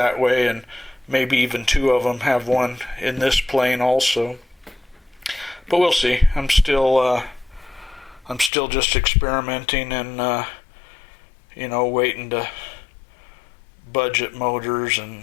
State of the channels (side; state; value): right; drops out; at 8.5 s